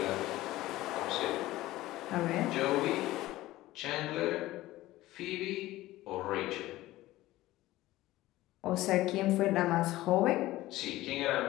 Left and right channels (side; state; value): right; quieter; 16.8 dB